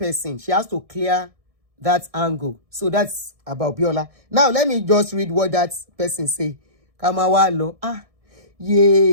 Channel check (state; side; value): late; left; 1.6 ms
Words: She has to clear that angle. So that's about Biola. Now let me just read what that person say. Kamawalo.